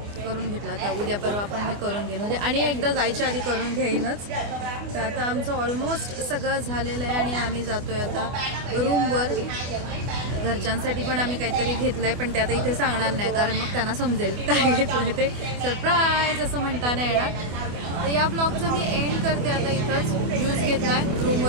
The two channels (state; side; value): late; left; 25 ms